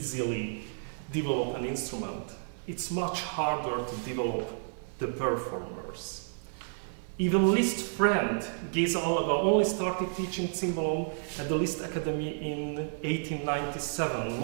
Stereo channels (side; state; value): left; silent; digital silence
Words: develop an instrument, it's much harder to develop the performers. Even Liszt's friend Géza Alaba only started teaching cimbalom at the Liszt Academy in 1897,